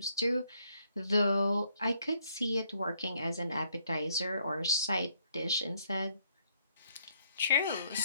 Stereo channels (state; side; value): inverted; both; correlation -0.70